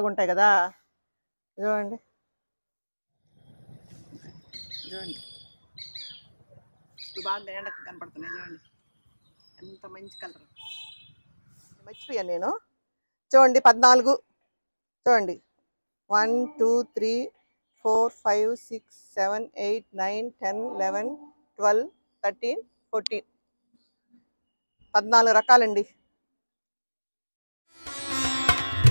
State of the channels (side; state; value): both; inverted; correlation -1.00